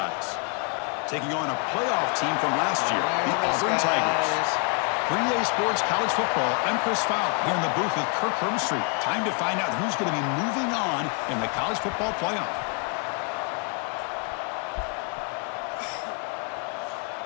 taking on a playoff team from last year, the Auburn Tigers. 3A Sports College Football, I'm Chris Fowler here in the booth with Kirk Herbstreit. Time to find out who's going to be moving on in the college football playoff.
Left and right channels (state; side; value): quieter; right; 38.1 dB